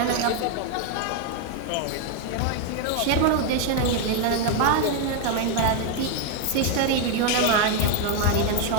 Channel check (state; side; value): different; both; correlation 0.01